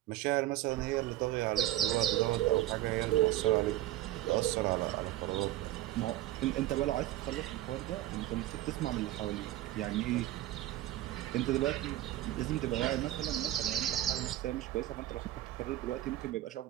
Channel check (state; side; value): quieter; left; 14.8 dB